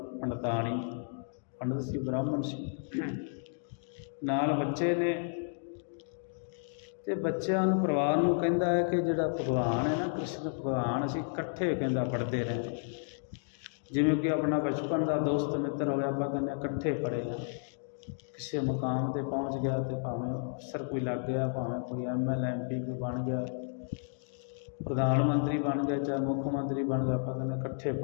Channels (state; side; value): silent; right; digital silence